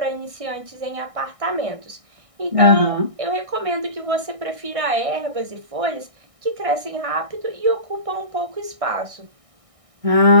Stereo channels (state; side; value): late; left; 1.6 ms